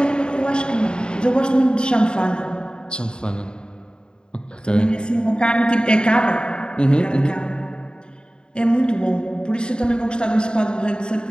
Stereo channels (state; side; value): late; right; 0.050 ms